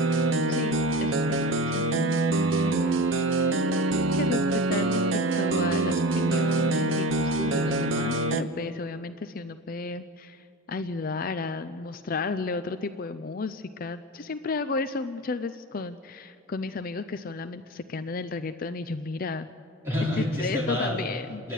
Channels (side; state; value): both; normal; correlation 0.31